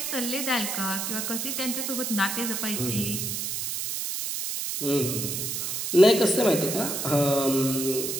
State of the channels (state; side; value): noise; right; hiss, 3 dB below the sound